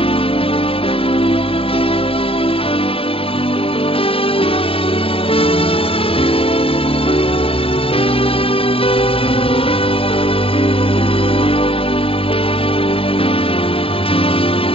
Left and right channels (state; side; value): late; right; 0.27 ms